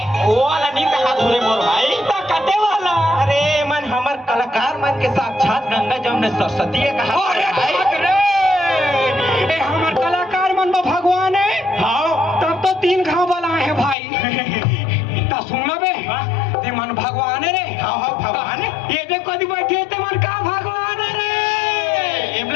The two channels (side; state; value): right; drops out; at 14.0 s